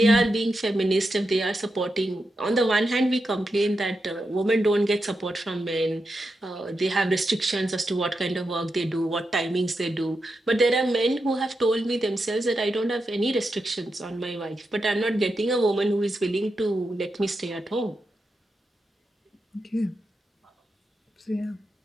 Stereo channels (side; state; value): both; normal; correlation 0.87